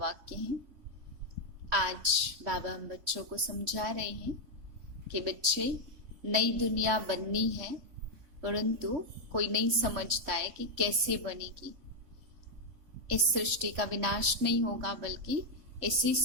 हैं। आज बाबा हम बच्चों को समझा रहे हैं कि बच्चे, नई दुनिया बननी है, परंतु कोई नहीं समझता है कि कैसे बनेगी। इस सृष्टि का विनाश नहीं होगा, बल्कि इसी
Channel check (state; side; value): late; left; 3.6 ms